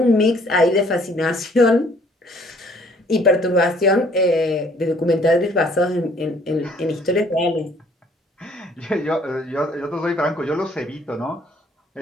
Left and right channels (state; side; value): normal; both; correlation 0.60